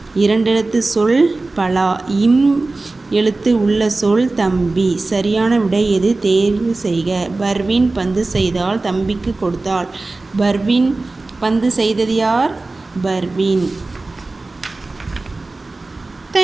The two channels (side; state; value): left; quieter; 3.3 dB